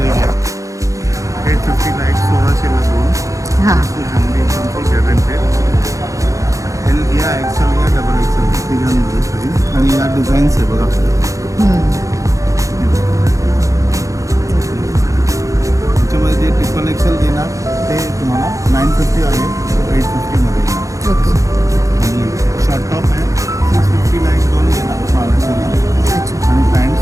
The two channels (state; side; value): late; left; 0.16 ms